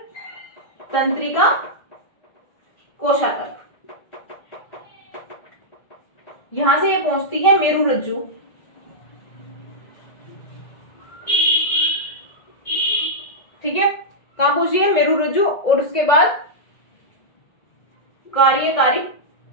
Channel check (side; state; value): right; late; 1.7 ms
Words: तंत्रिका कोशा तक। यहां से ये पहुंचती है मेरुरज्जु, ठीक है, कहां पहुंची है? मेरुरज्जु। और उसके बाद कार्यकारी